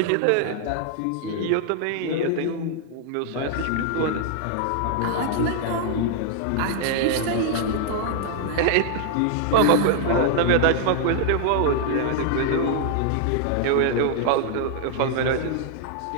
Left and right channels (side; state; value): both; different; correlation -0.01